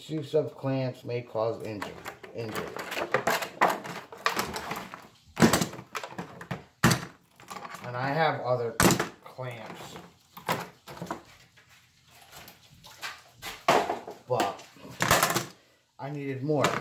of clamps may cause injury. And I have other clamps, but I needed more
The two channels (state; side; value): identical; both; correlation 1.00